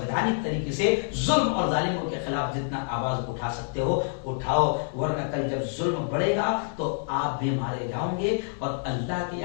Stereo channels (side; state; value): right; silent; digital silence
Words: طریقے سے ظلم اور ظالموں کے خلاف جتنا آواز اٹھا سکتے ہو اٹھاؤ, ورنہ کل جب ظلم بڑھے گا تو آپ بھی مارے جاؤ گے اور اللہ کے